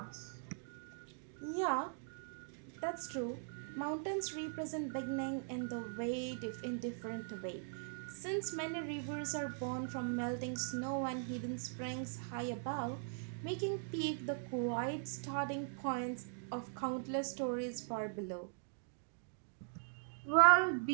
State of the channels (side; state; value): left; silent; digital silence